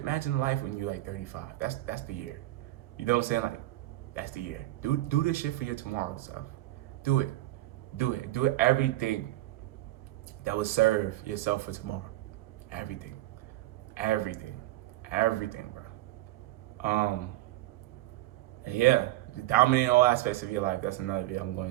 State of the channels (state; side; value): quieter; left; 16.6 dB